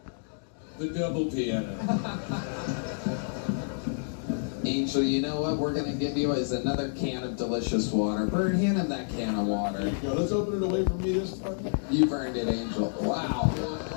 The double piano. Angel, you know what we're gonna give you is another can of delicious water. Bird, hand him that can of water. Yo, let's open it away from me this time. You've earned it, Angel. Wow.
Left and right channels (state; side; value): silent; right; digital silence